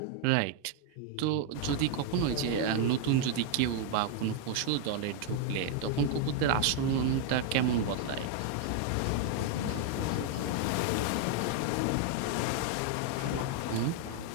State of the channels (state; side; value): different; both; correlation 0.00